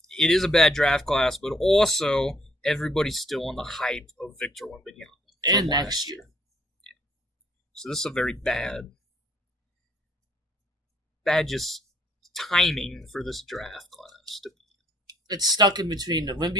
it is a bad draft class, but also everybody's still on the hype of Victor Wembanyama. And next year. Yeah. So this is a very bad just timing for this draft class to be. It's stuck in between the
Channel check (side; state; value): both; normal; correlation 0.65